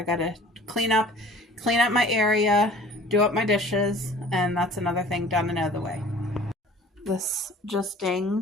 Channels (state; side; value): normal; both; correlation 0.48